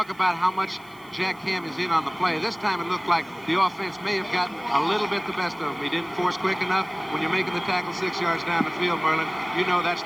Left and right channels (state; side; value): noise; right; hiss, 27 dB below the sound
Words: about how much Jack Ham is in on the play. This time it looked like the offense may have gotten a little bit the best of him. He didn't force quick enough. When you're making the tackle 6 yards down the field, Merlin, you know that's